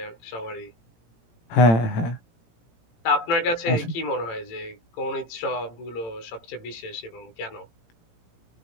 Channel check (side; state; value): right; late; 17 ms